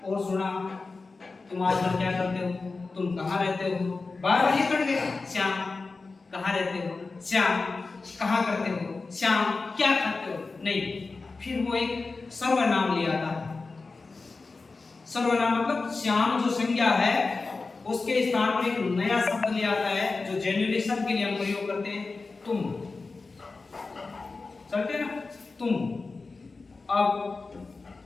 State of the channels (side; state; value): right; quieter; 3.9 dB